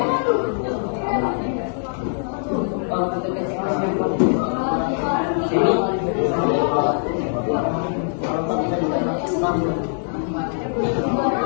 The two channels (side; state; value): right; silent; digital silence